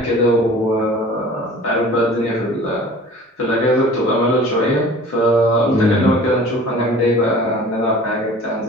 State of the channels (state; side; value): normal; both; correlation 0.44